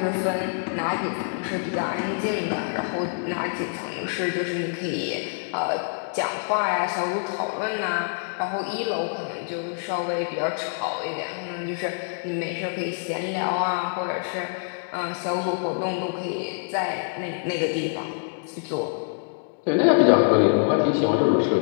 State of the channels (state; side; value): silent; right; digital silence